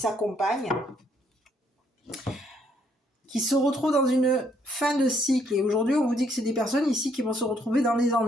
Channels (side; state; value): both; normal; correlation 0.69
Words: qui se retrouvent dans une fin de cycle. Et aujourd'hui, on vous dit que c'est des personnes ici qui vont se retrouver dans les